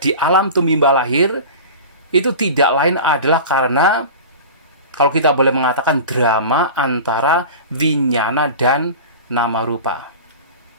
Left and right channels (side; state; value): both; inverted; correlation -0.34